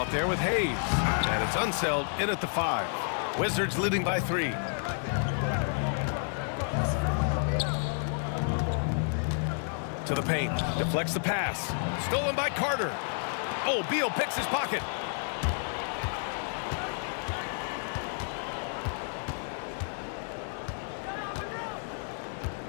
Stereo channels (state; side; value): silent; right; 57 dB below the other